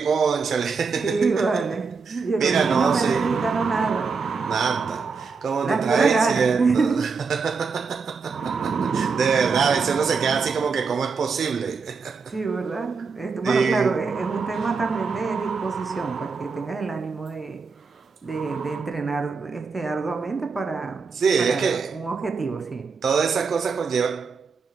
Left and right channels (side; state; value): left; quieter; 5.0 dB